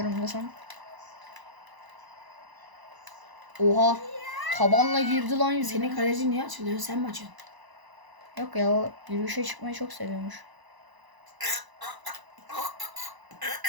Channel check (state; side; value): late; left; 1.0 ms